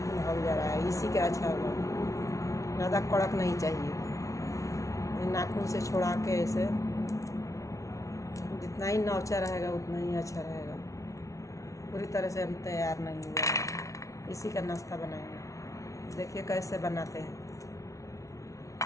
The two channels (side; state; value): right; late; 0.15 ms